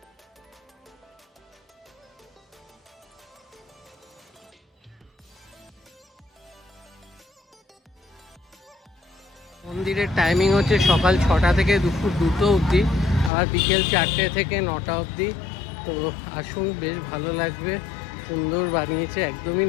মন্দিরের টাইমিং হচ্ছে সকাল 6টা থেকে দুপুর 2টো অবধি, আর বিকেল 4টে থেকে 9টা অবধি। তো আসুন, বেশ ভালো লাগবে, সুন্দর বানিয়েছে, একদমই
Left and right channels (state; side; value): drops out; right; at 13.3 s